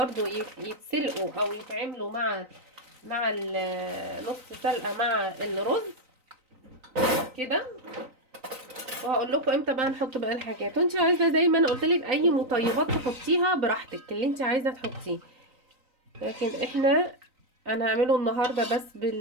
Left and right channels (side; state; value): left; late; 3.9 ms